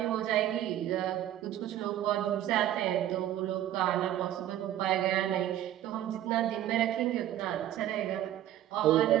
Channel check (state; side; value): quieter; left; 12.3 dB